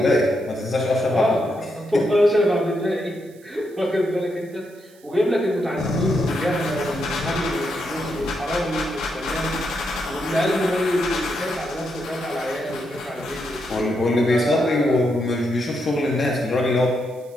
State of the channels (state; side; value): noise; right; hiss, 28 dB below the sound